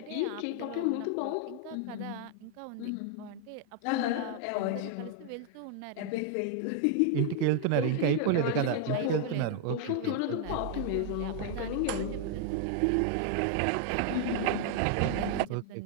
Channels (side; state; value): both; different; correlation 0.00